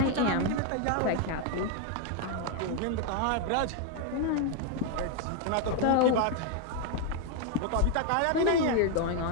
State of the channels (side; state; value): both; different; correlation 0.01